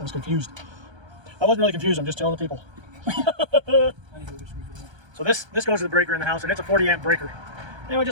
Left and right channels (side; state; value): left; late; 1.3 ms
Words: confused. I wasn't really confused. I'm just telling the people. So this goes to the breaker in the house, and it's a 40 amp breaker. Anyway, I